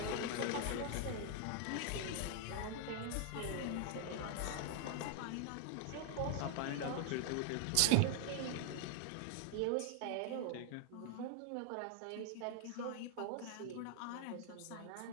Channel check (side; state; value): both; different; correlation 0.00